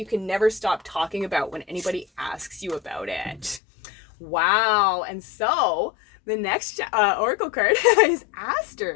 can never stop talking about when anybody asks you about it. Wow. And so the next oracle card is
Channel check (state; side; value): drops out; right; at 3.6 s